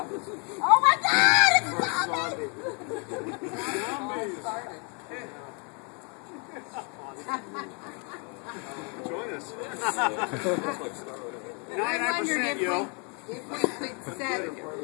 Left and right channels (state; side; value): quieter; right; 35.7 dB